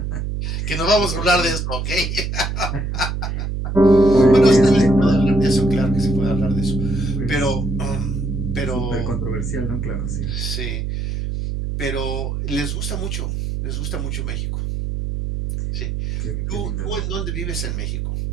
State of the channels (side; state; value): right; noise; hum, 2 dB below the sound